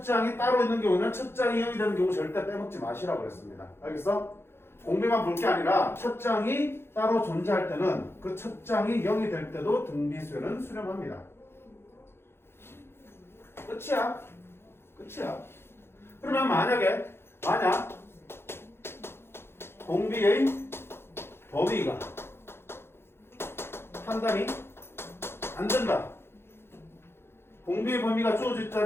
장이 따로 있는 경우는 첫 장이 0이 되는 경우 절대 빼먹지 마시라고 그랬습니다. 알겠어? 공비만 볼 게 아니라 첫 장이 따로 존재할 때는 그 첫 장이 0이 될 때도 등비수열은 수렴합니다. 끝이야. 그러면 만약 공비의 범위가 판단이 안 된다. 공비의 범위가 주어지지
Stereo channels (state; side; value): late; right; 0.12 ms